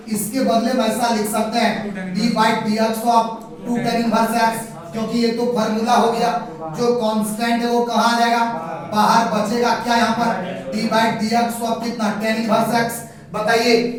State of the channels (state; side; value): identical; both; correlation 1.00